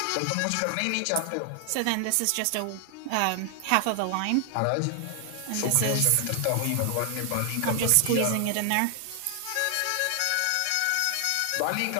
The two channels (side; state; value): both; different; correlation 0.00